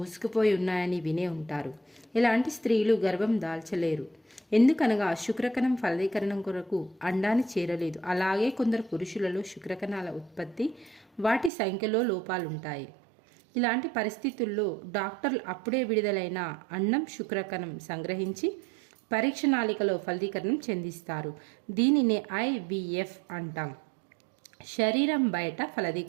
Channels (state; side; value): drops out; left; at 11.5 s